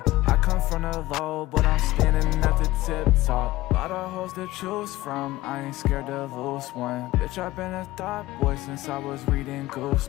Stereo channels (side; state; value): right; quieter; 17.5 dB